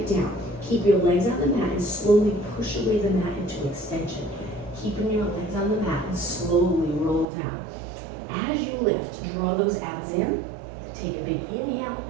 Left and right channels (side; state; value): left; drops out; at 7.2 s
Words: down. Keep your legs on the mat and slowly push away the mat into extension. Keeping your legs on the mat and slowly roll down. As you lift, draw those abs in. Take a big inhale,